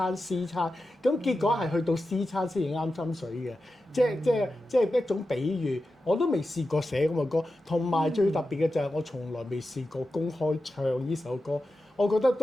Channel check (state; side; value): normal; both; correlation 0.91